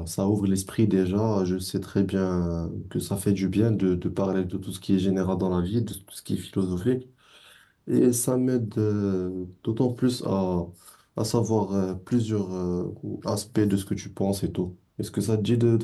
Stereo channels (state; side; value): identical; both; correlation 1.00